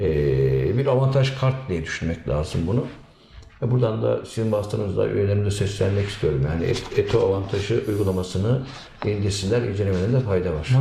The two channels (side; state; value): both; identical; correlation 1.00